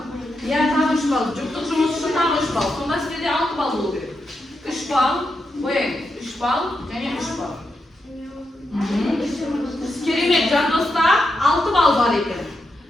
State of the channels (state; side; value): normal; both; correlation 0.85